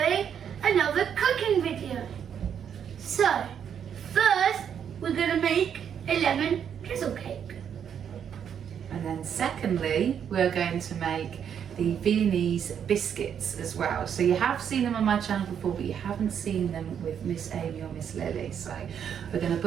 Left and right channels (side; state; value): left; quieter; 8.3 dB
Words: another cooking video. So, first we're going to make a lemon drizzle cake. And then secondly, we're going to make the Viennese biscuits as well. So you have seen them on my channel before, but you haven't seen them with Miss Amy or Miss Lily. So we're going to